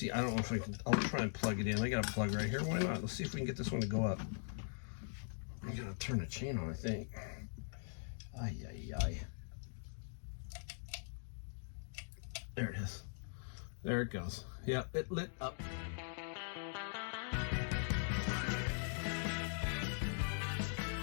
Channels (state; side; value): silent; right; digital silence